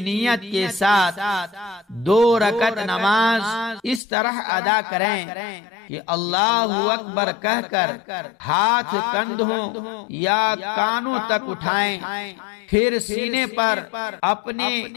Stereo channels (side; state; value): right; drops out; at 4.0 s